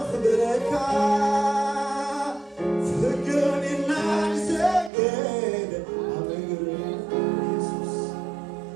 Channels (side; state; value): left; drops out; at 4.9 s